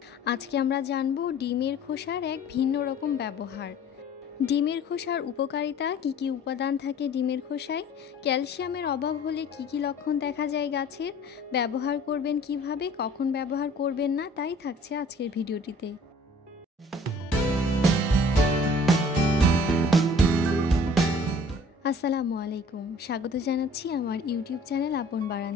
আজকে আমরা জানবো ডিমের খোসার এক ভিন্ন রকম ব্যবহার। ডিমের খোসার উপকারিতা, কী কী উপাদান থাকে ডিমের খোসায়, ক্যালসিয়ামের অভাব হলে কী কী লক্ষণ দেখা যায় গাছের, ব্যবহার করবেন কিভাবে, কখন ব্যবহার করবেন না, তাই থাকছে আজকের ভিডিওটিতে। আসসালামু আলাইকুম, স্বাগত জানাচ্ছি আমার ইউটিউব চ্যানেল আপন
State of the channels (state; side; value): normal; both; correlation 0.51